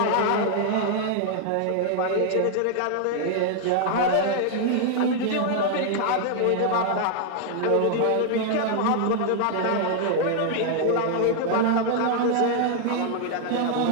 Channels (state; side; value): different; both; correlation 0.00